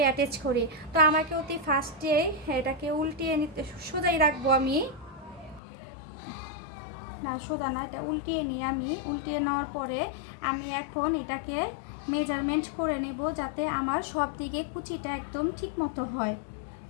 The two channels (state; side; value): drops out; right; at 5.6 s